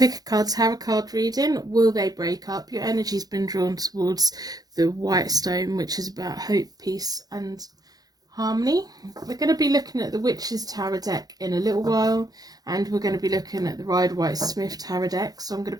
a Card Tarot card reading. Will they break up? Your energy's been drawn towards the White Stone, which is about hope, peace and harmony. We're going to be looking at the Witch's Tarot deck in a little while, and we're going to be looking at the Rider-Waite-Smith Tarot deck, so I'm going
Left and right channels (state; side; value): late; left; 0.19 ms